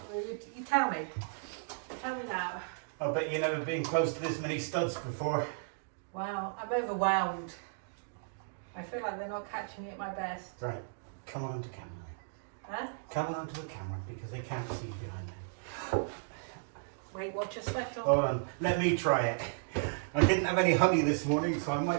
Well, you tell me. Tell me now. I bet you've never been close to this many studs before. Wow, I'm overwhelmed. I feel like they're not catching me at my best. Right, come on onto camera. Huh? Come on onto the camera because they can't see you behind there. Wait, what's your special? Hold on, let me try it. I didn't have any honey this morning, so I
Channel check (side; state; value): left; silent; digital silence